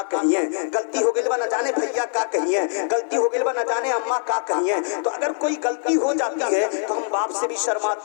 कहिए, गलती हो गई बा न जाने भैया का कहिए, गलती हो गई बा न जाने अम्मा का कहिए। तो अगर कोई गलती हो जाती है तो हम बाप से भी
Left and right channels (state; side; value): silent; right; 58 dB below the other